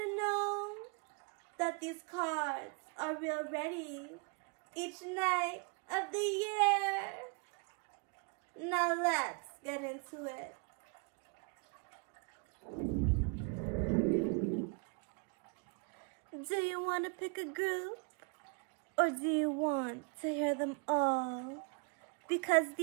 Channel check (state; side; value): quieter; left; 33.8 dB